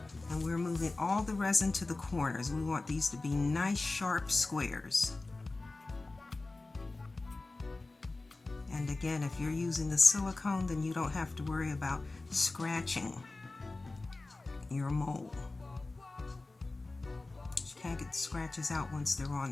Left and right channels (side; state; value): right; quieter; 3.2 dB